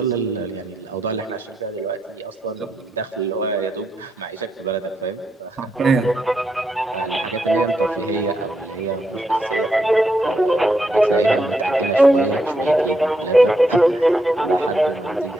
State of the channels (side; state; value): both; normal; correlation 0.80